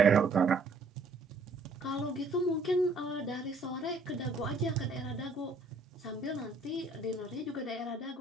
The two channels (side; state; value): left; quieter; 3.2 dB